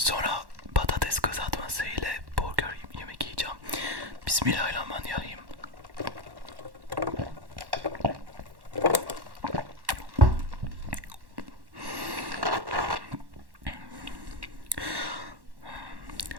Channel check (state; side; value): late; left; 1.1 ms